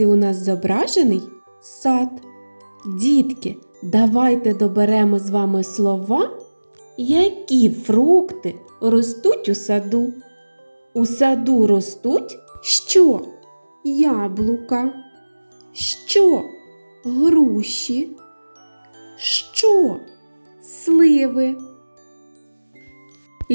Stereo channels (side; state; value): both; inverted; correlation -1.00